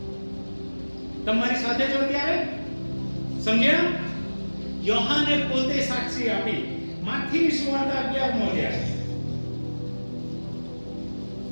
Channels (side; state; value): both; inverted; correlation -1.00